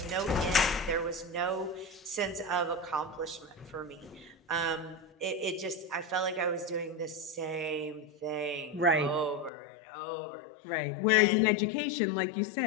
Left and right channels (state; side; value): drops out; right; at 9.5 s